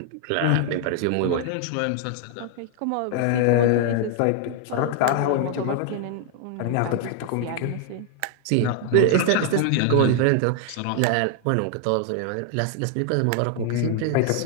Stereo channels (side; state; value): both; different; correlation 0.00